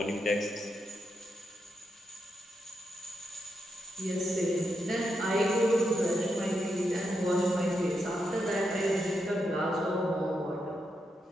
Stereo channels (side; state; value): both; normal; correlation 0.84